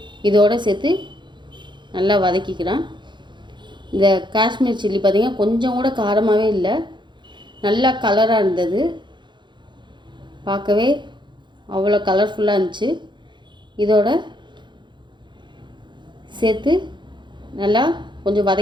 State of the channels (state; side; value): late; left; 0.23 ms